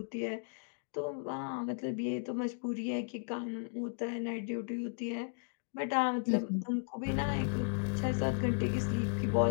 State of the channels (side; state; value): right; silent; digital silence